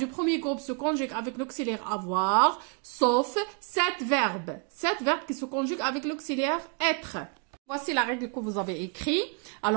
premier groupe se conjuguent avec l'auxiliaire avoir, sauf 7 verbes. 7 verbes qui se conjuguent avec l'auxiliaire être. Voici la règle que vous avez écrite.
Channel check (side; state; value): left; quieter; 36.6 dB